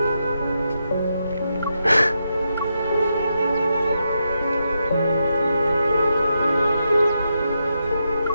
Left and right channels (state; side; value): inverted; both; correlation -0.84